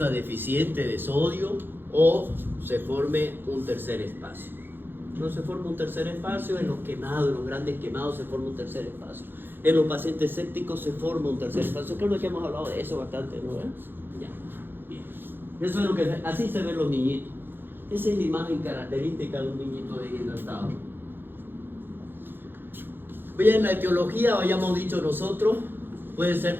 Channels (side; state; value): left; late; 0.099 ms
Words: deficiente de sodio o se forme un tercer espacio. No se forma un tercer espacio, en los quemados, en los grandes quemados se forma un tercer espacio. En los pacientes sépticos se forma un tercer espacio. Creo que hemos hablado de eso bastante, ¿no? Ya, bien. Eso es lo que, así se ven los niñitos. Esa es la imagen característica de un niñito deshidratado. Bien, la etiología, habíamos dicho nosotros, puede ser